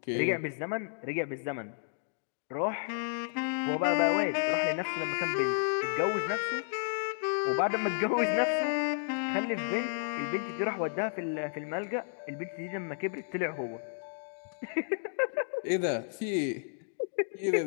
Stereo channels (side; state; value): right; silent; digital silence